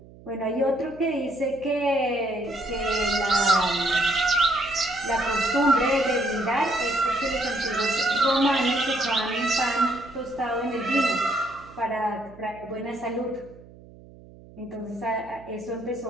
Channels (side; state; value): right; noise; hum, 21 dB below the sound